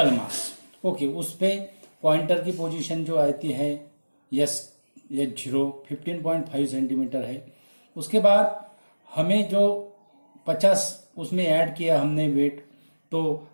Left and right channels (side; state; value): both; inverted; correlation -1.00